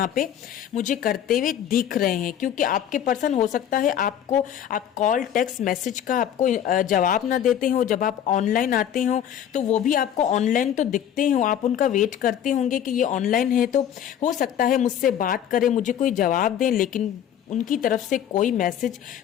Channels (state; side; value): quieter; right; 9.9 dB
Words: पे मुझे करते हुए दिख रहे हैं। क्योंकि आपके पर्सन हो सकता है आप कॉल टेक्स्ट मैसेज का आपको जवाब ना देते हो, जब आप ऑनलाइन आते हो तो वो भी आपको ऑनलाइन तो दिखते हो, आप उनका वेट करते होंगे कि ये ऑनलाइन है, तो हो सकता है मुझसे बात करें, मुझे कोई जवाब दें, लेकिन उनकी तरफ से कोई मैसेज,